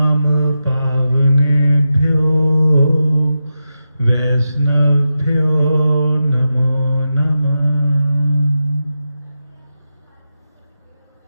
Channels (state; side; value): inverted; both; correlation -0.89